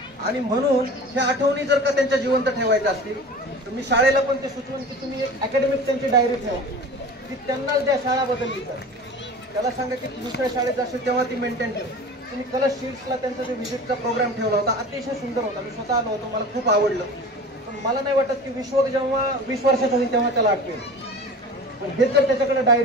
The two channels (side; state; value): both; normal; correlation 0.37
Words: आणि म्हणून ह्या आठवणी जर का त्यांच्या जिवंत ठेवायच्या असतील तर मी शाळेला पण ते सुचवून की तुम्ही एक अकॅडमिक त्यांची डायरी ठेवा, की त्यांना ज्या शाळा बदलली तर त्याला सांगा की दुसऱ्या शाळेत जाशील तेव्हा ती मेंटेन ठेव. तुम्ही कलर शीट्सला त्यांचा जो व्हिजिटचा प्रोग्राम ठेवला होता, अतिशय सुंदर होता, मी स्वतः आलो होतो, मला खूप आवडलं. पण मला नाही वाटत की विश्वक जेव्हा 20 वर्षाचा होईल तेव्हा त्याला आठवेल. पण हेच जर त्याच्याकडे